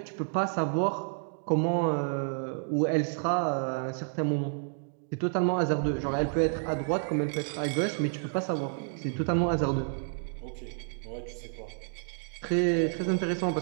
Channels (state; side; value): silent; left; digital silence